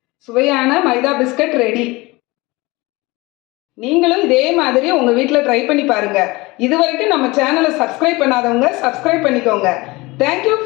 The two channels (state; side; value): quieter; right; 22.7 dB